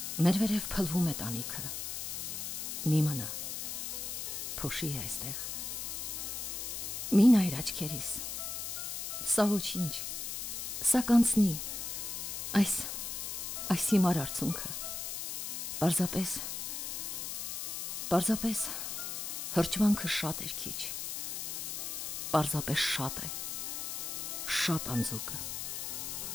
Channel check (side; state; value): left; noise; hiss, 4 dB below the sound